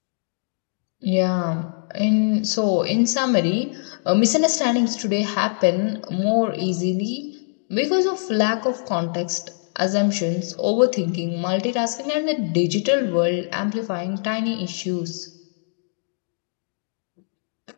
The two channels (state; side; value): silent; right; digital silence